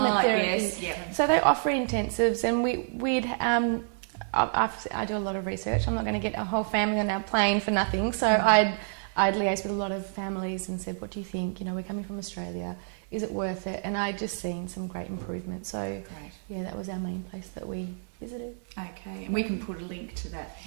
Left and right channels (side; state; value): left; silent; digital silence